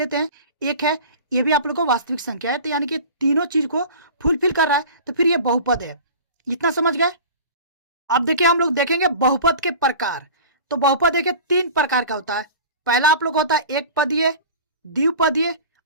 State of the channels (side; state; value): both; inverted; correlation -0.38